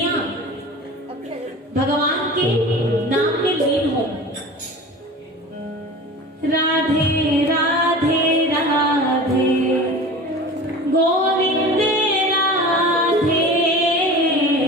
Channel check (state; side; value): normal; both; correlation 0.36